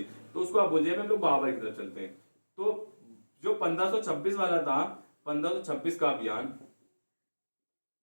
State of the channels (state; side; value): inverted; both; correlation -1.00